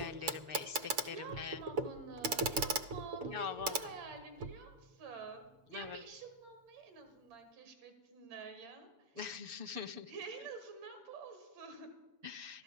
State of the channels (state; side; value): late; left; 7.0 ms